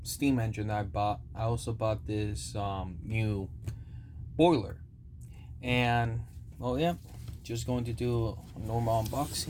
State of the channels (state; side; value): identical; both; correlation 1.00